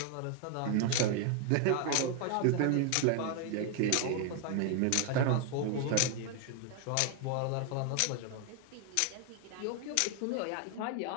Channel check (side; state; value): both; different; correlation 0.01